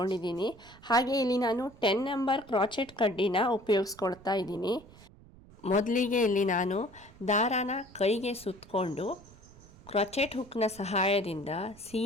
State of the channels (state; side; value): noise; right; rumble, 23 dB below the sound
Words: ಹಾಗೆ ಇಲ್ಲಿ ನಾನು 10 ನಂಬರ್ ಕ್ರೋಚೆಟ್ ಕಡ್ಡಿನ ಉಪಯೋಗಿಸ್ಕೊಳ್ತಾ ಇದ್ದೀನಿ. ಮೊದಲಿಗೆ ಇಲ್ಲಿ ನಾನು ದಾರಾನ ಕೈಗೆ ಸುತ್ತಕೊಂಡು ಕ್ರೋಚೆಟ್ ಹುಕ್ನ ಸಹಾಯದಿಂದ